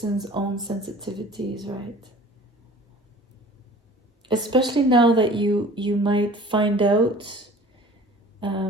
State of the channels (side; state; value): both; normal; correlation 0.45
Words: own sensitivities, right? Especially now that you might find out